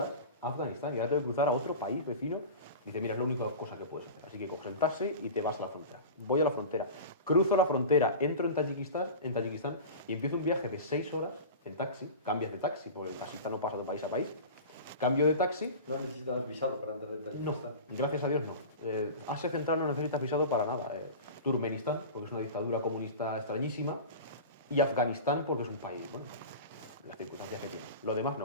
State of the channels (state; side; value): inverted; both; correlation -0.32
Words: a Afganistán y ahora tengo que cruzar a otro país vecino. Dice, mira, es la única cosa que puedes hacer. Así que coges el taxi y te vas a la frontera. Voy a la frontera, cruzo la frontera, entro en Tayikistán y empiezo un viaje de 6 horas en taxi. Cambias de taxi, porque el taxista no pasa de país a país. Cambio de taxi. No necesitas visado para entrar en Tayikistán. No, gracias a Dios no. Asia Central no necesitas visado para nada. Turkmenistán, porque es una dictadura comunista extrañísima. Y Afganistán, porque es un país, bueno, las circunstancias que tiene. Lo demás